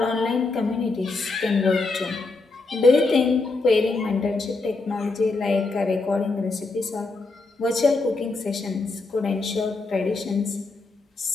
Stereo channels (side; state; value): right; quieter; 3.6 dB